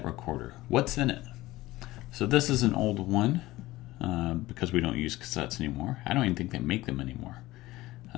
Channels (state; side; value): quieter; right; 17.9 dB